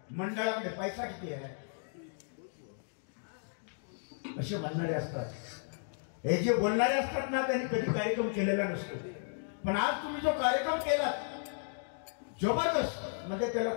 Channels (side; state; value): right; silent; digital silence